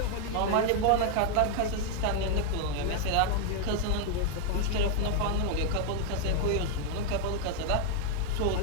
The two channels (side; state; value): both; different; correlation 0.01